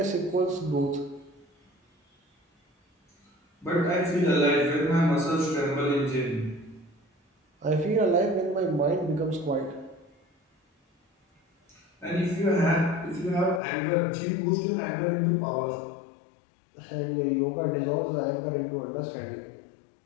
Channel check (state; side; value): drops out; right; at 13.6 s